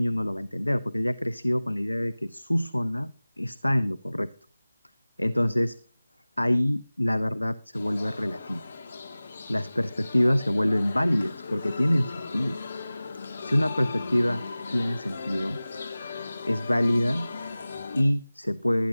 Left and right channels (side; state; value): both; inverted; correlation -0.98